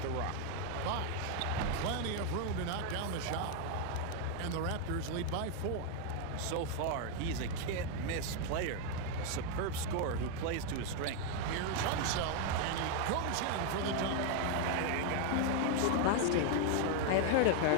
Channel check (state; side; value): different; both; correlation 0.01